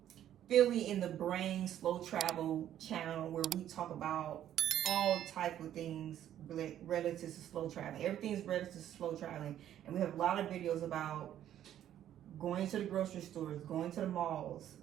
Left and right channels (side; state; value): left; quieter; 11.2 dB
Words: Philly in the Brain Slow Travel channel, where we talk about all type of things relative to slow traveling. Everything's relative to slow traveling, and we have a lot of videos about going to the grocery stores, going to the malls,